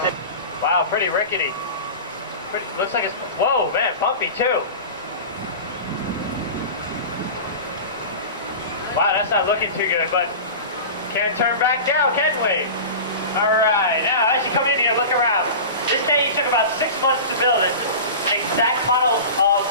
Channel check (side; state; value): both; inverted; correlation -0.32